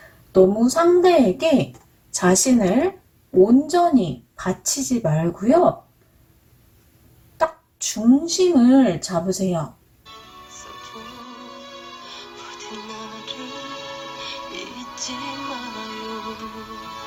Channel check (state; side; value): identical; both; correlation 1.00